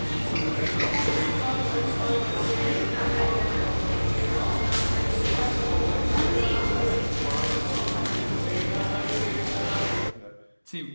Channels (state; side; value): inverted; both; correlation -1.00